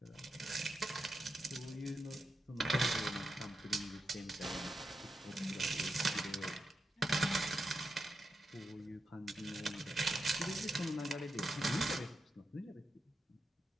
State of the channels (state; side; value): normal; both; correlation 0.87